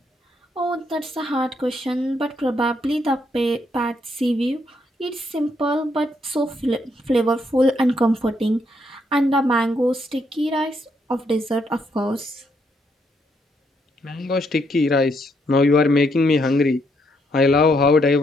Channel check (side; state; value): both; normal; correlation 0.75